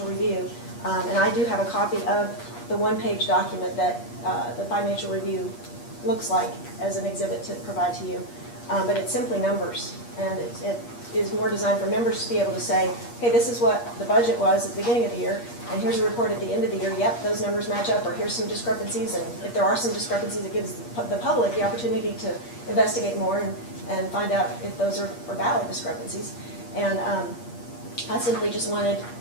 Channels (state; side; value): late; right; 8.4 ms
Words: review. And I do have a copy of the one-page document that the financial review looks like as an exhibit to provide to you. But it's simply numbers, and it is more designed for members to be able to say, hey, this is what the budget was at the beginning of the year, and here's a report at the end of the year, yep, those numbers match up, or here's some discrepancies, and if there are some discrepancies, it gives the public the opportunity to investigate more and find out if those are valid discrepancies. And I simply just wanted